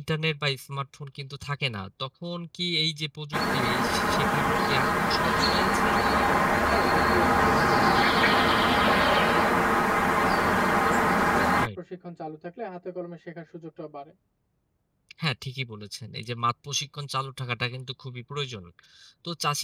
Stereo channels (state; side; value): identical; both; correlation 1.00